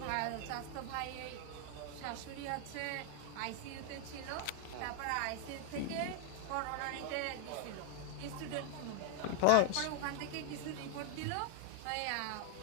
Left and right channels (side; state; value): both; different; correlation 0.00